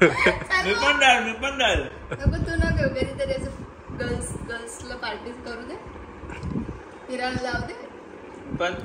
मी पण राहिल. नको तू न घेऊ, कधीतरी असं गर्ल्सला पार्टी करू दे, फिरायला जाऊ दे. पण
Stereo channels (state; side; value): identical; both; correlation 1.00